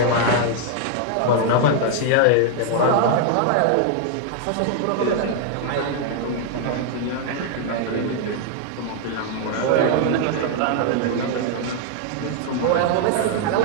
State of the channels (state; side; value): different; both; correlation 0.00